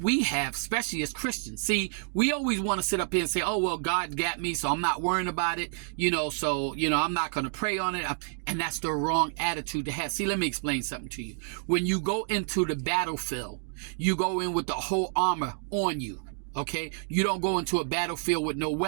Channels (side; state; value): left; silent; 59 dB below the other